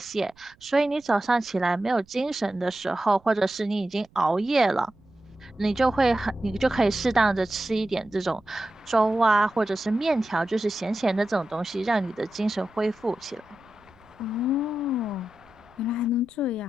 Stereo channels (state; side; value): noise; right; rumble, 30 dB below the sound